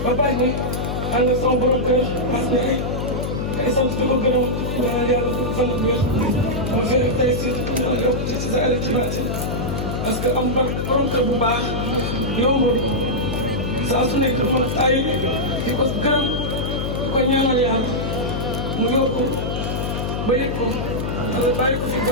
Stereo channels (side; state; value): left; noise; hum, 2 dB below the sound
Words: ba bàyyi ne ànd ak sama borom kër mas ne ay sant di ko gërëm ñaanal yàlla fan ak wér moo fi rek tey si yàlla yokk ci sa àll ci baati parce que am borom kër bu baax yombul saa su nekk dafa ay di ko gërëm di ko ñaanal yàlla mu yokku ba yëg ko wala bàyyi ko fi